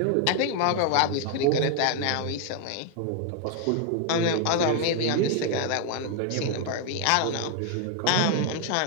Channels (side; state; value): both; different; correlation 0.00